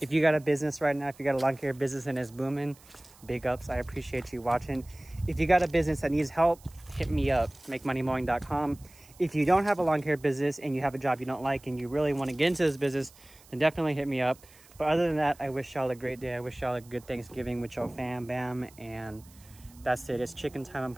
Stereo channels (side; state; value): right; noise; hiss, 25 dB below the sound